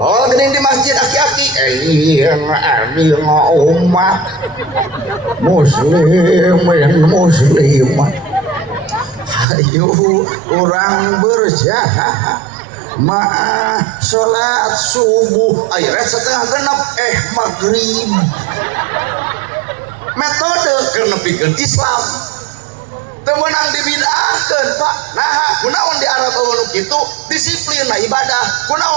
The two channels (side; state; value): left; drops out; at 9.5 s